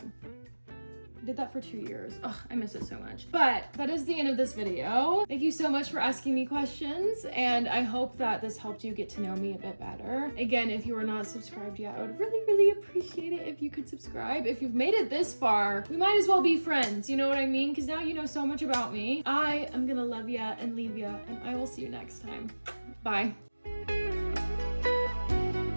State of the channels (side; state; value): both; inverted; correlation -1.00